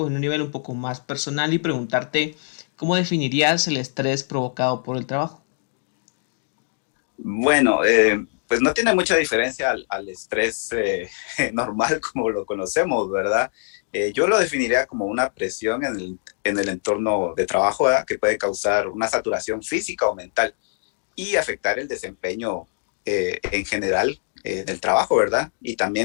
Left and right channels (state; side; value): silent; right; digital silence